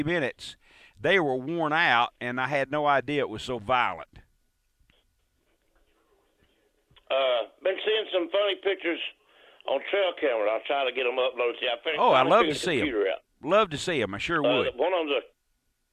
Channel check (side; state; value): both; identical; correlation 1.00